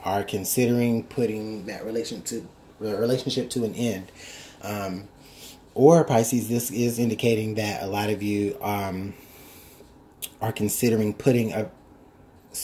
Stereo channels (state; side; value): identical; both; correlation 1.00